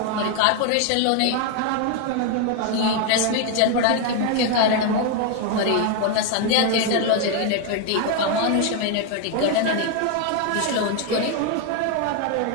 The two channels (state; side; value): different; both; correlation 0.01